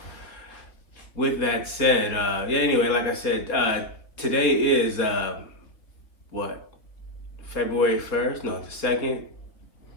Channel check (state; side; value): late; right; 3.4 ms